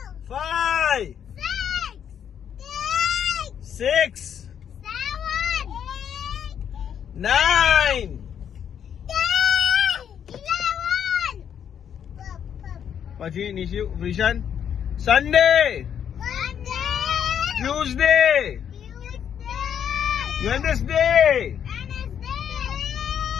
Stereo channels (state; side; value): quieter; right; 8.7 dB